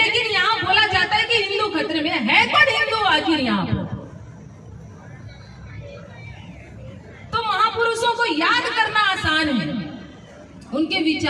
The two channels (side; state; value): both; identical; correlation 1.00